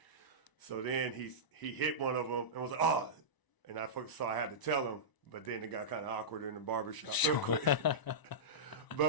So then he hit one of them and was like, oh. And so I had to tell him. But then it got kind of awkward in the barbershop real quick.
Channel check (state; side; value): late; right; 1.0 ms